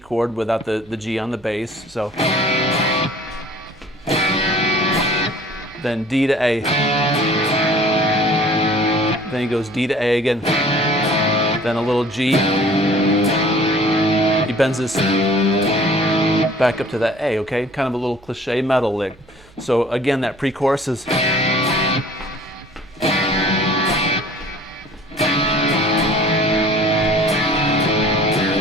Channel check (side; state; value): right; noise; hum, 27 dB below the sound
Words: without the G on the bass. So then D to A. Then he goes D to A again. Then a little G. He bends this back up to that A, okay? Kind of a little cliche metal lick. So again, that pre-chorus is.